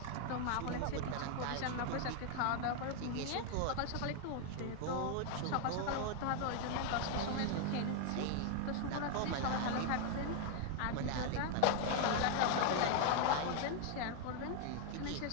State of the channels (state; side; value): different; both; correlation 0.00